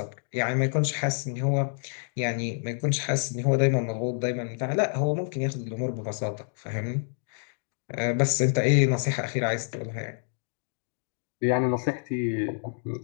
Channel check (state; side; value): silent; right; digital silence